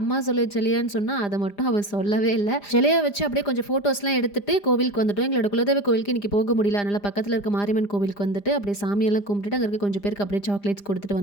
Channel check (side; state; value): right; late; 5.0 ms